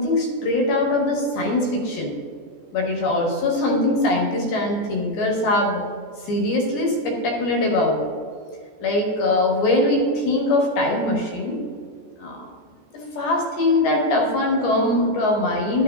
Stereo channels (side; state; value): right; late; 14 ms